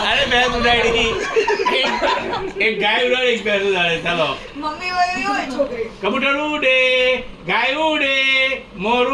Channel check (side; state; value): both; identical; correlation 1.00